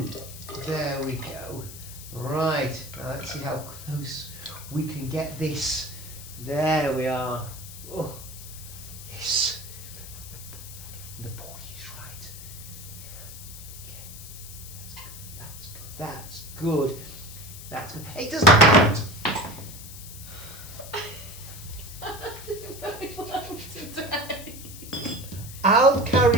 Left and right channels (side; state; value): left; noise; hiss, 13 dB below the sound